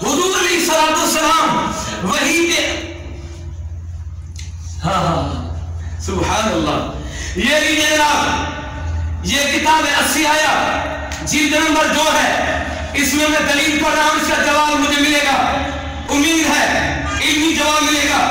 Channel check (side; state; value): both; identical; correlation 1.00